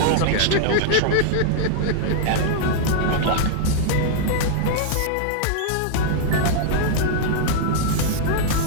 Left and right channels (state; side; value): different; both; correlation -0.01